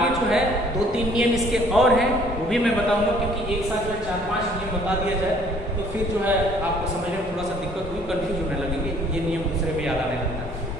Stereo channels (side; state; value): both; normal; correlation 0.58